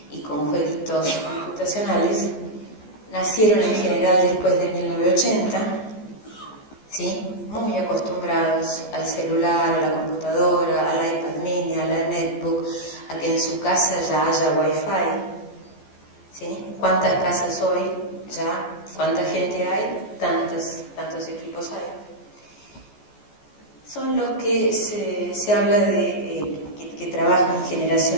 y con jueguitos computacionales, nacieron en general después de 1980, ¿sí? Muy acostumbrados al celular, a la computadora, al iPad mini, a la netbook, a que en su casa ya haya wifi, ¿sí? ¿Cuántas casas hoy ya? ¿Cuánta gente hay? Tantos equipos hay. Son los que se habla de que trabajan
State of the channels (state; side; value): late; right; 14 ms